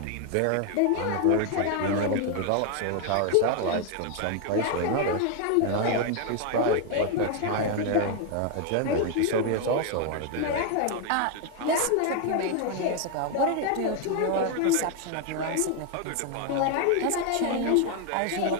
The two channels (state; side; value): different; both; correlation 0.01